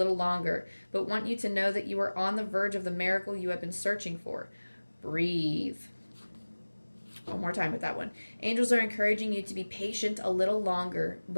longer, but want you to know that you are on the verge of the miracle you have been searching for. Breathe. One more time with that one. Angels are encouraging you to be patient a little longer,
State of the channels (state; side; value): inverted; both; correlation -1.00